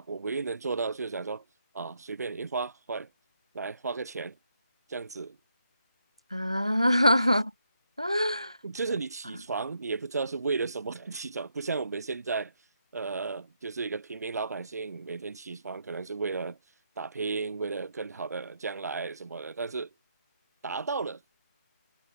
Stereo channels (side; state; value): both; inverted; correlation -0.77